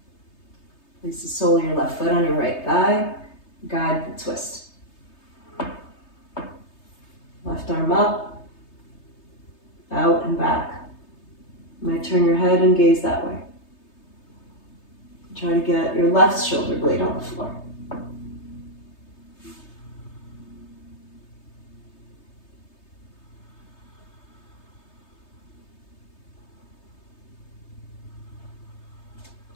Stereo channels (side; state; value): right; late; 3.3 ms